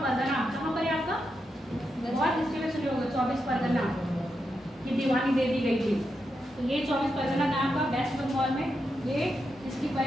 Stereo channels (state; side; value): normal; both; correlation 0.85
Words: कहाँ पर है आपका, बहुत हिस्ट्री में सुने होंगे 24 परगना की दीवानी दे दी गई थी। तो ये 24 परगना नाम का वेस्ट बंगाल में ये इसकी